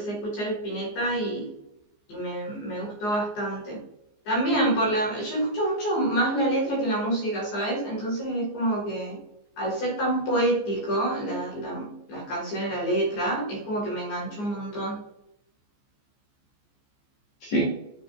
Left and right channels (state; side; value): late; right; 14 ms